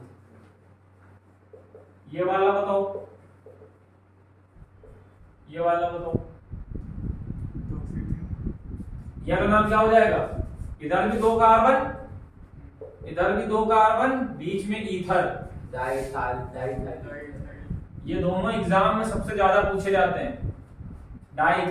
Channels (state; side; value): identical; both; correlation 1.00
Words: ये वाला बताओ, ये वाला बताओ, ये का नाम क्या हो जाएगा? इधर भी 2 कार्बन, इधर भी 2 कार्बन, बीच में ईथर। ये दोनों एग्जाम में सबसे ज्यादा पूछे जाते हैं।